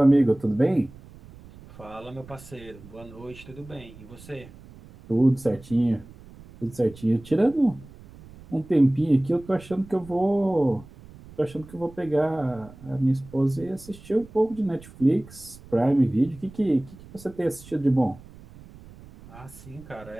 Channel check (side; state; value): right; noise; rumble, 20 dB below the sound